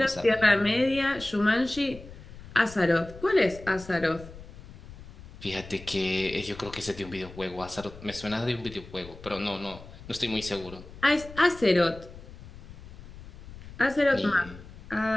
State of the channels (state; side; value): noise; left; rumble, 17 dB below the sound